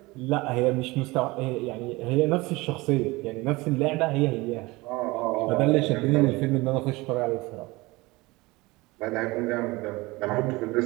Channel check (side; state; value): left; quieter; 22.2 dB